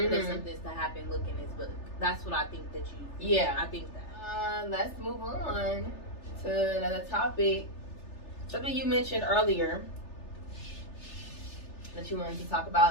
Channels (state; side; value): late; right; 3.3 ms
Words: that something's to happen. Look in this book. That's what I think that you. Yeah, I think that. Let's move on to another topic. Something you mentioned earlier that you wanted to talk